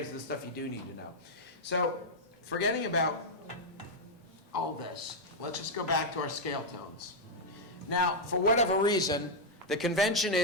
of the stuff you do need to know. So forgetting about all this, let's just go back to our scale tones. Now, for whatever reason, the convention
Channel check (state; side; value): normal; both; correlation -0.02